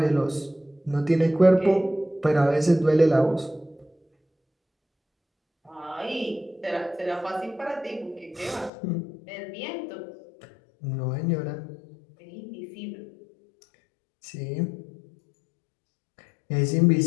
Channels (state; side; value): drops out; right; at 8.7 s